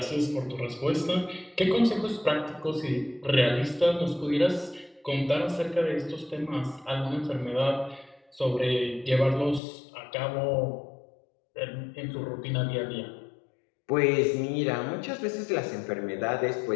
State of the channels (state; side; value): drops out; right; at 9.6 s